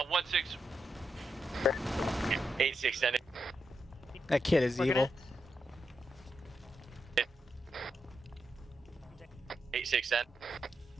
8-6 send it. that kid is evil. 8-6 send.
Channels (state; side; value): normal; both; correlation 0.84